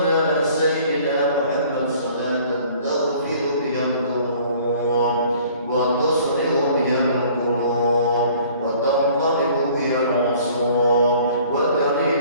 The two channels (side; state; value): both; inverted; correlation -0.53